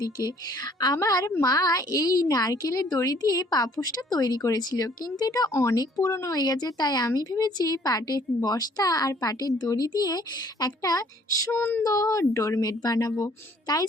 আমার মা এই নারকেলের দড়ি দিয়ে পাপোশটা তৈরি করেছিল, কিন্তু এটা অনেক পুরনো হয়ে গেছে, তাই আমি ভেবেছি পাটের বস্তা আর পাটের দড়ি দিয়ে একটা সুন্দর ডোরমেট বানাবো। তাই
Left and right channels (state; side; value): normal; both; correlation 0.59